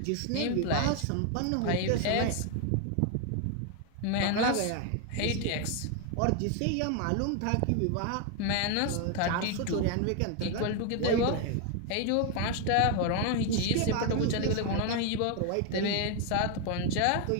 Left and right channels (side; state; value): both; different; correlation 0.01